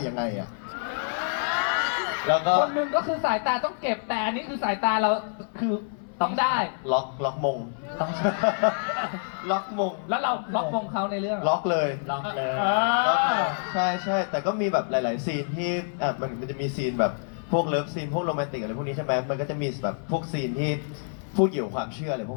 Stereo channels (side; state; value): right; silent; 58 dB below the other